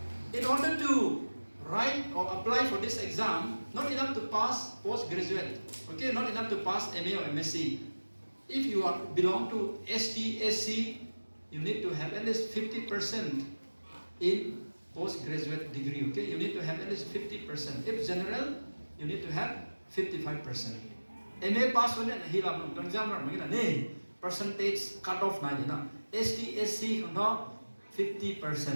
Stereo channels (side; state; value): both; inverted; correlation -1.00